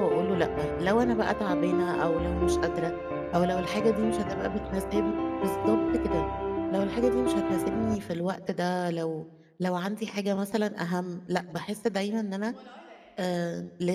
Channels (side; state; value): both; identical; correlation 1.00